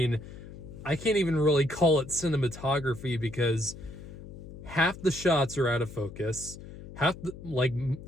I can't even really call it cinematography because half the shots are out of focus.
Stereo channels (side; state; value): left; noise; hum, 14 dB below the sound